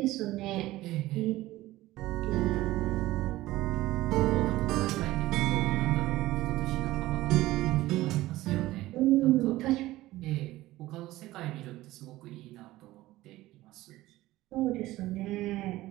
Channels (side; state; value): left; quieter; 17.0 dB